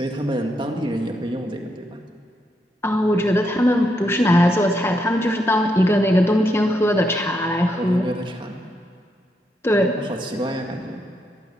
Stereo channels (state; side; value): normal; both; correlation 0.80